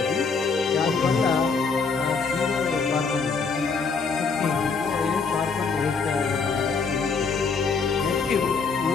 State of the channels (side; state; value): right; quieter; 5.0 dB